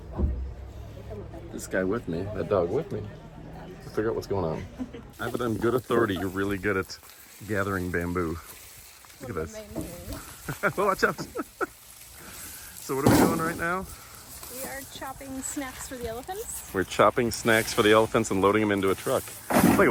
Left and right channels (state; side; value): identical; both; correlation 1.00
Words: this guy with me, that dog with me, to figure out what's going on? I have it on good authority. You're really good at gathering bamboo. Look at this. Watch out. So what are we doing right now? We are chopping snacks for the elephants. We're chopping snacks for the elephants and loading them into a truck. It's like